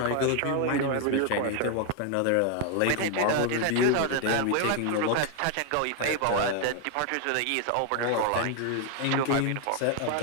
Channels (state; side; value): different; both; correlation 0.00